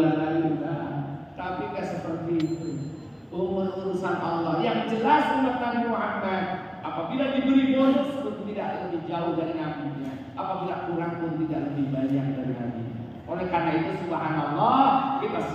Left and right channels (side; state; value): both; identical; correlation 1.00